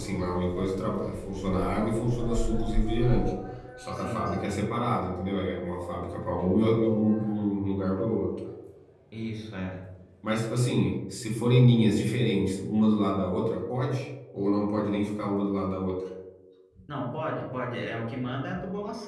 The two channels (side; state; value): both; identical; correlation 1.00